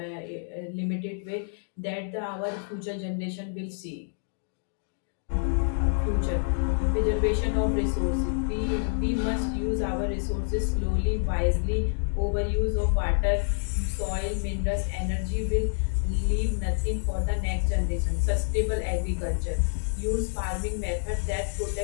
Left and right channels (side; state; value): right; silent; digital silence